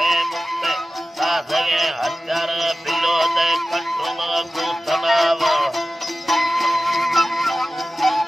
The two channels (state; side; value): normal; both; correlation 0.95